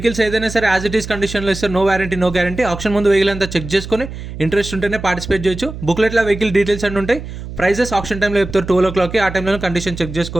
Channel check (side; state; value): right; noise; hum, 10 dB below the sound